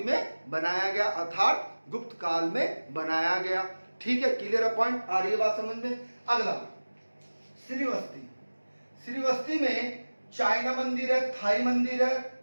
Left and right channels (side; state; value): both; inverted; correlation -1.00